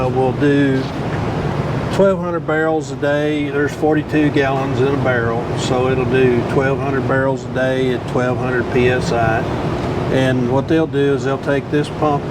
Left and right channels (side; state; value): both; identical; correlation 1.00